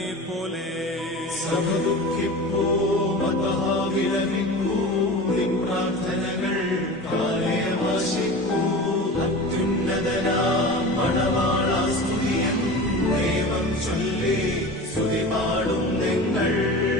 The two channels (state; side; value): normal; both; correlation 0.33